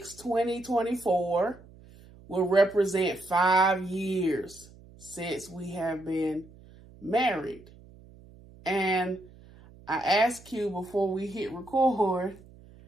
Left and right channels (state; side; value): noise; right; hum, 23 dB below the sound